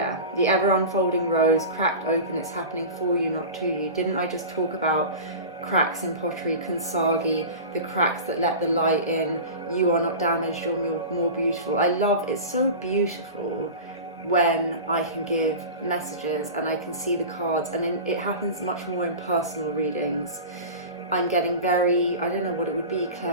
the ever unfolding rose, cracked open, it's happening for you, not to you. Didn't I just talk about cracks in pottery, Kansagi, the cracks that let the light in? You are not damaged, you're more beautiful. I love, it's so beautiful when I can give messages and I can see the cards, and then it happens much more in personal readings. I'm getting very, I don't know what it would be,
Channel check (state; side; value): inverted; both; correlation -0.31